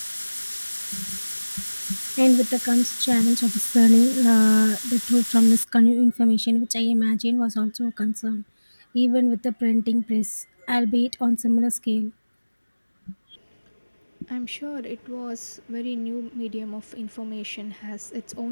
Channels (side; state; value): both; inverted; correlation -1.00